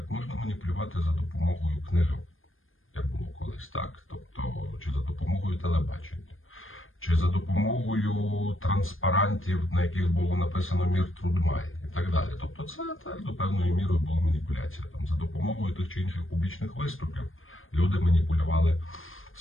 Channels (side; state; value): right; late; 0.59 ms